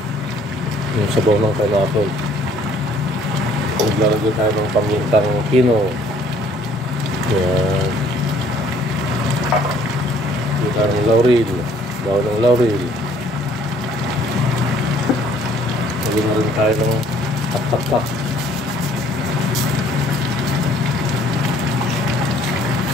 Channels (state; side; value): normal; both; correlation 0.59